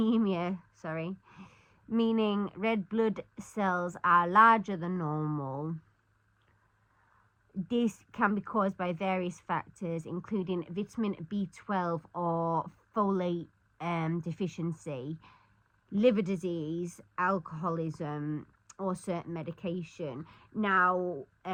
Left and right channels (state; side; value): identical; both; correlation 1.00